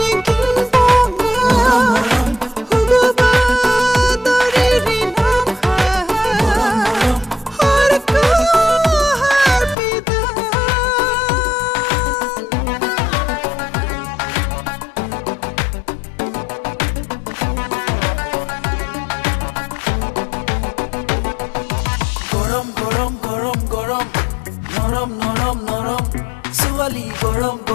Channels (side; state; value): right; drops out; at 9.8 s